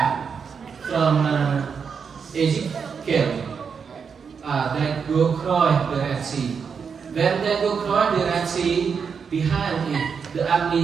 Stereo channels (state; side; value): quieter; left; 6.2 dB